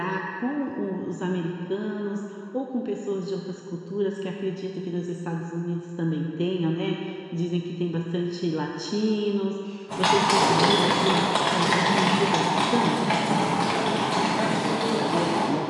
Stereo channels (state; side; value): identical; both; correlation 1.00